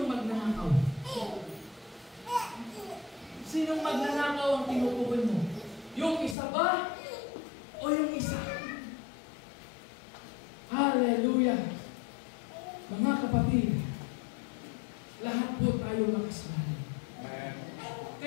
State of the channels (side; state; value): right; drops out; at 6.4 s